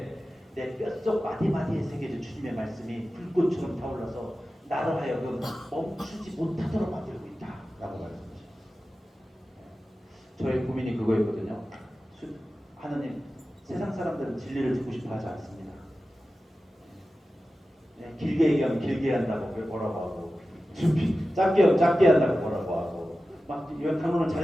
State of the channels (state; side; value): normal; both; correlation 0.94